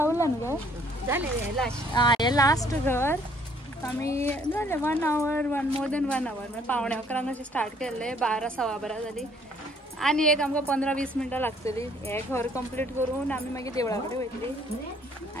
उरला न्हू हे लास्ट घर आमी जालें 1 आवर मोर देन 1 आवर म्हणजे 11:15 अशें स्टार्ट केल्ले 12 सवा 12 जाली आणि एक आमकां 15-20 मिनटां लागतली हे घर कंप्लीट करून आमी मागीर देवळा कडेन वयतली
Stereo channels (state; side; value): normal; both; correlation 0.62